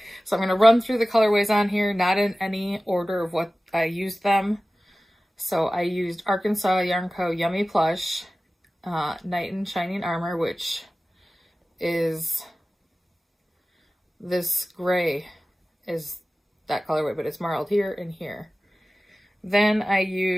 So I'm going to run through the colorways on here, not in any order of what I used them. So I used Arkansas Yarn Co. Yummy Plush, Knight in Shining Armor, which is this gray is that colorway, but it's marled here and here. Then I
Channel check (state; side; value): normal; both; correlation 0.96